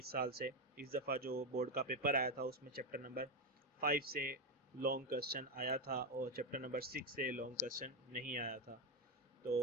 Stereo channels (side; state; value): both; normal; correlation 0.09